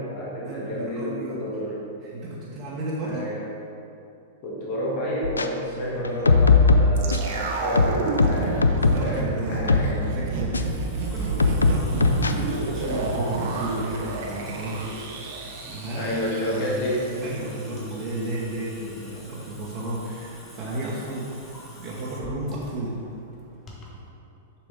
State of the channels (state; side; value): inverted; both; correlation -0.43